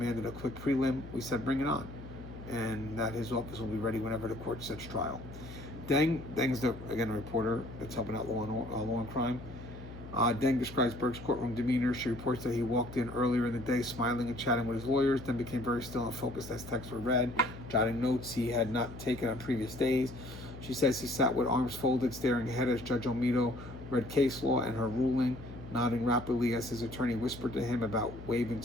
a quick prelim, we said bring it on, and that his office will be ready whenever the court sets trial. Deng's again a reporter that's helping out law and crime. Deng describes Burke's courtroom demeanor. She reports that he walked in earlier in the day smiling and chatting with his lawyers, then became very still and focused as texts were read, jotting notes he had not taken on previous days. She says he sat with arms folded, staring ahead as Judge Olmedo read case law and her ruling, nodding rapidly as his attorney whispered to him about waiving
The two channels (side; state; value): left; noise; hum, 13 dB below the sound